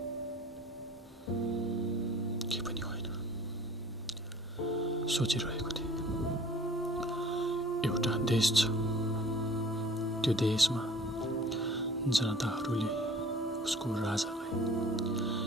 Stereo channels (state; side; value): normal; both; correlation 0.48